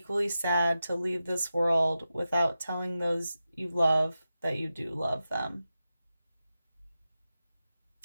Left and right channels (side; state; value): both; inverted; correlation -0.91